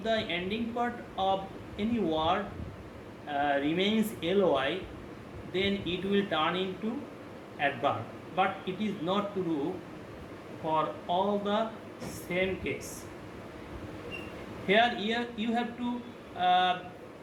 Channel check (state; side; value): identical; both; correlation 1.00